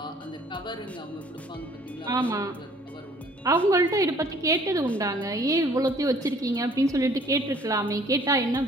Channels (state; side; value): normal; both; correlation 0.57